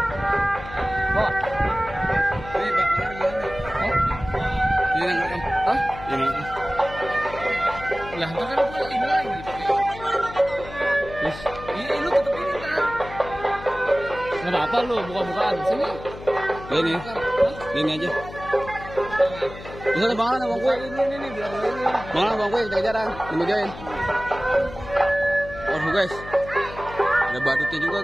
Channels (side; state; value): left; noise; hum, 14 dB below the sound